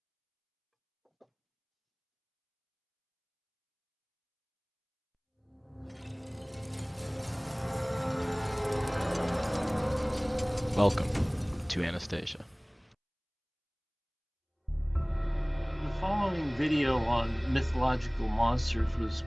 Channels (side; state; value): both; identical; correlation 1.00